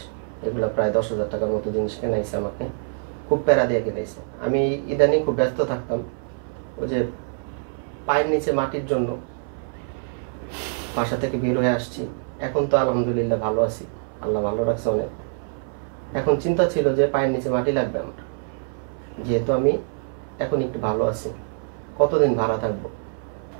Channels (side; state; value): left; silent; 62 dB below the other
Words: এগুলো প্রায় 10,000 টাকার মতো জিনিস কেনাইছে আমাকে, খুব প্যারা দিয়ে কিনাইছে। আমি ইদানিং খুব ব্যস্ত থাকতাম, ওই যে পায়ের নিচে মাটির জন্য বাসা থেকে বের হয়ে আসছি। এখন তো আলহামদুলিল্লাহ ভালো আছি, আল্লাহ ভালো রাখছে অনেক। এখন চিন্তা ছিল যে পায়ের নিচে মাটি লাগবে আমার, যেহেতু আমি এখন একটু ভালো আছি, কতদিন ভাড়া থাকবো।